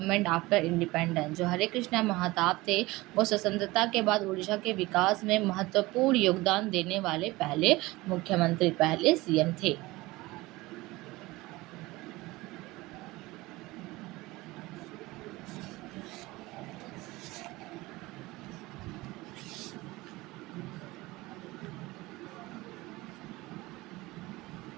after independence. जो हरे कृष्ण महताब थे वो स्वतंत्रता के बाद उड़ीसा के विकास में महत्वपूर्ण योगदान देने वाले पहले मुख्यमंत्री, पहले CM थे.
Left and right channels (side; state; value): left; quieter; 20.4 dB